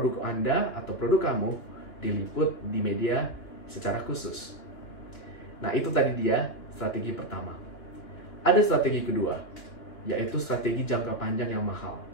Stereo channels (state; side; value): late; right; 3.0 ms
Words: Anda atau produk kamu diliput di media secara khusus. Nah, itu tadi dia strategi pertama. Ada strategi kedua, yaitu strategi jangka panjang yang mahal.